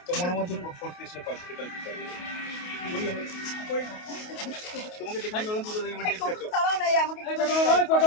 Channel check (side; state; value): right; late; 28 ms